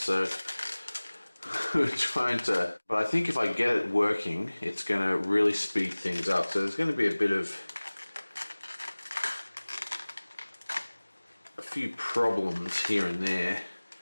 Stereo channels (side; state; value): both; inverted; correlation -1.00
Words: we're trying to, but I think if I get it working, it's going to really speed things up. So there's going to be a few problems here and there.